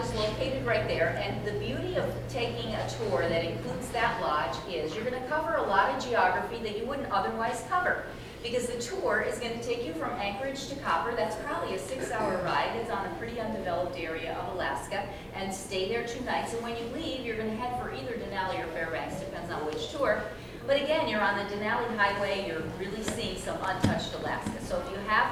located right there, and the beauty of taking a tour that includes that lodge is you're going to cover a lot of geography that you wouldn't otherwise cover. Because the tour is going to take you from Anchorage to Copper. That's probably a 6-hour ride. It's on a pretty undeveloped area of Alaska, and stay there 2 nights. And when you leave, you're going to head for either Denali or Fairbanks, depends on which tour. But again, you're on the Denali Highway. You're really seeing some untouched Alaska. So if you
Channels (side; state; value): both; identical; correlation 1.00